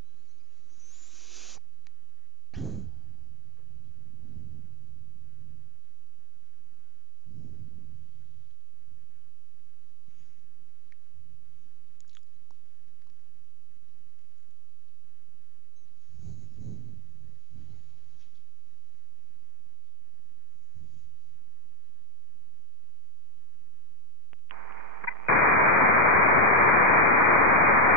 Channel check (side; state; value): both; normal; correlation 0.01